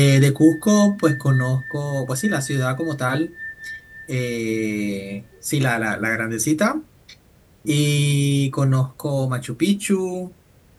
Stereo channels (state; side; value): identical; both; correlation 1.00